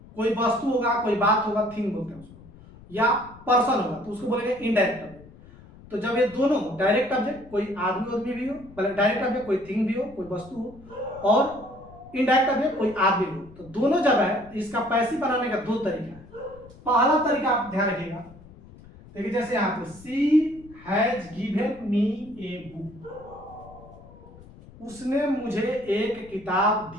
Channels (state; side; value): noise; left; rumble, 21 dB below the sound